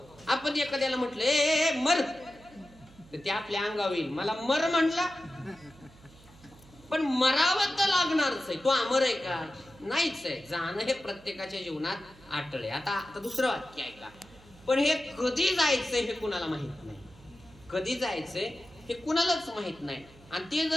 आपण एखाद्याला म्हटलं ए मर, तर ते आपल्या अंगावर येईल. मला मर म्हणला, पण मरावं तर लागणारच आहे. तो अमर आहे का? नाहीच आहे. जाणं हे प्रत्येकाच्या जीवनात अटळ आहे. आता दुसरं वाक्य ऐका, पण हे कधी जायचंय हे कुणाला माहित नाही. कधी जायचंय हे कुणालाच माहित नाही. आणि ते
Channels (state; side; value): noise; right; hum, 24 dB below the sound